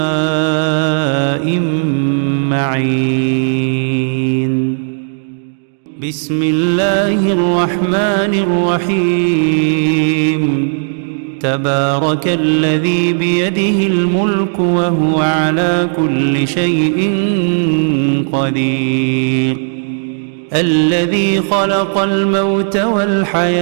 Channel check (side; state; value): left; silent; digital silence